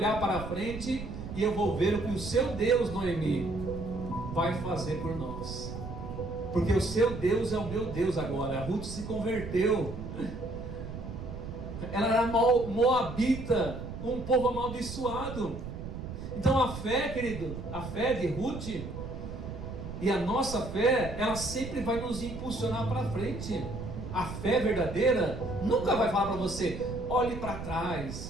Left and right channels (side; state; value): right; noise; rumble, 8 dB below the sound